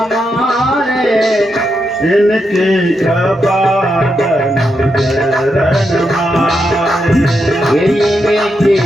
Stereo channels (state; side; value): normal; both; correlation 0.84